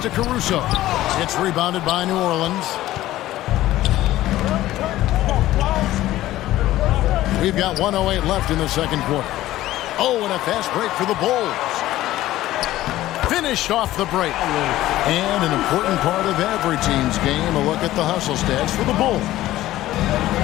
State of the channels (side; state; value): right; quieter; 15.2 dB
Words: Caruso. It's rebounded by New Orleans. We've got 1:08 left in the second quarter. Oh, and a fast break for the Bulls. Finished off the break. And an important part of every team's game, a look at the hustle stats for the Bulls.